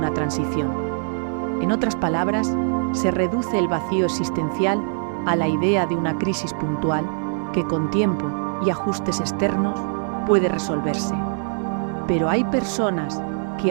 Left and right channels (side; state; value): left; silent; digital silence